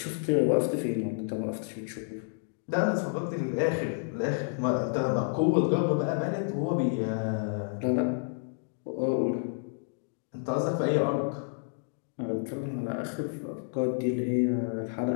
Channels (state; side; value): silent; right; digital silence